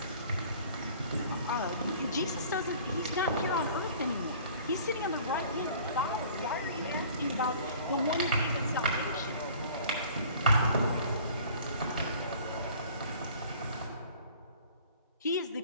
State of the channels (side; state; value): both; inverted; correlation -0.49